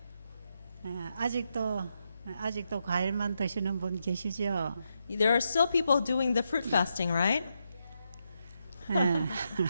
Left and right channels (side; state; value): both; inverted; correlation -0.82